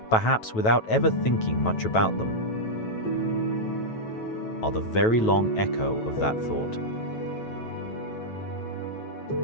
perhaps without ever thinking much about them, are the very long echo of that thought.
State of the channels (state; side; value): late; right; 9.1 ms